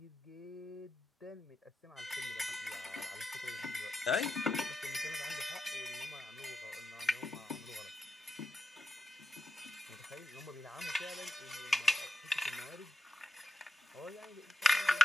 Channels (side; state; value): both; normal; correlation 0.89